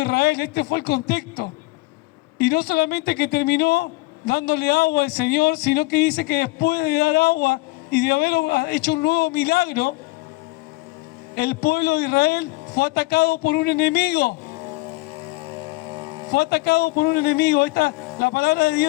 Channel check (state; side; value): quieter; right; 23.2 dB